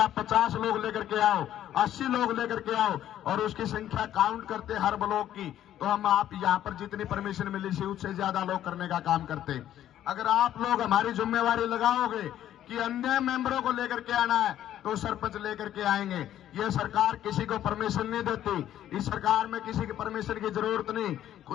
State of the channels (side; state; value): right; quieter; 11.7 dB